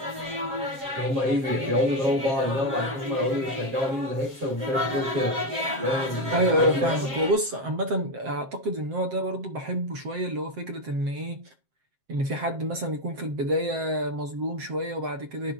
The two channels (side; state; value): left; late; 7.7 ms